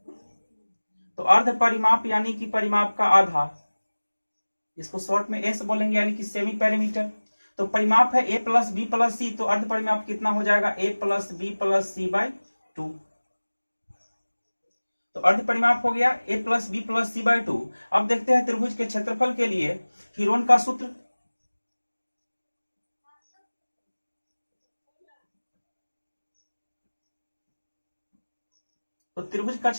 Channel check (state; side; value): inverted; both; correlation -1.00